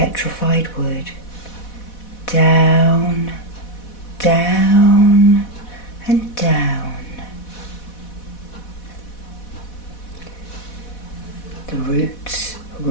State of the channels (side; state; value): right; late; 4.1 ms